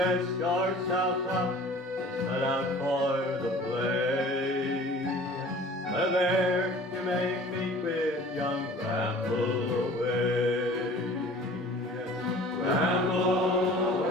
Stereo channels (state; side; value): normal; both; correlation 0.46